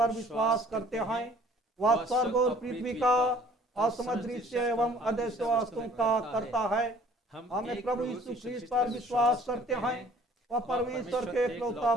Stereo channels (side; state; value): both; normal; correlation 0.54